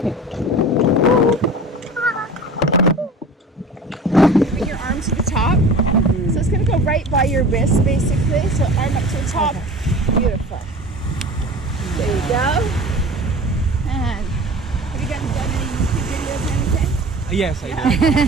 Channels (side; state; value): both; normal; correlation 0.39